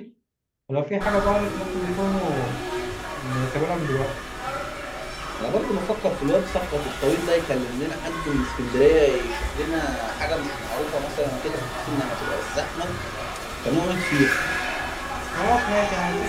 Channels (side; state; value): both; identical; correlation 1.00